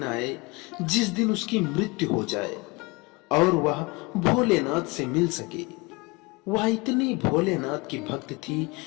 आए जिस दिन उसकी मृत्यु हो जाए और वह भोलेनाथ से मिल सके। वह इतनी भोलेनाथ की भक्त थी,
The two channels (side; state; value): right; quieter; 25.8 dB